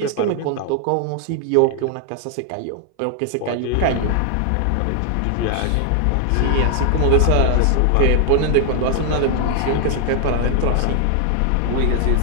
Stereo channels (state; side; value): different; both; correlation 0.00